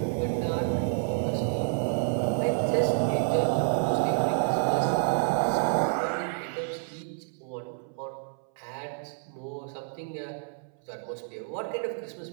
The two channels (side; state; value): left; silent; 59 dB below the other